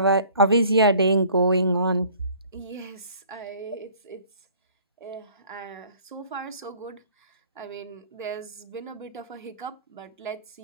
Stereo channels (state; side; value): inverted; both; correlation -0.53